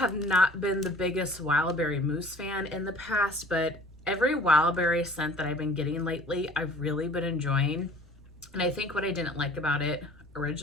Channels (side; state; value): right; noise; rumble, 27 dB below the sound